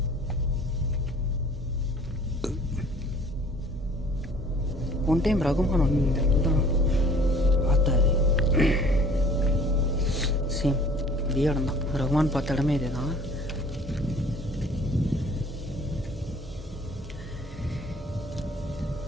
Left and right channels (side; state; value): both; normal; correlation 0.52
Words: ஒன் டைம் ரகுமான் வந்து இந்த இடத்துல தான் பார்த்தாரு. சேம் இதே இடம் தான். ரகுமான் பார்த்த இடமே இதே தான்.